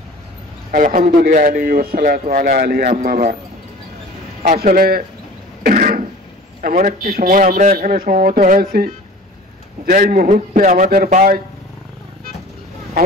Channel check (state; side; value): normal; both; correlation 0.42